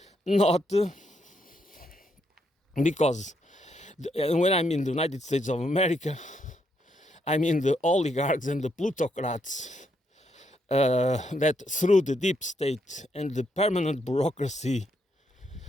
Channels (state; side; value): normal; both; correlation 0.77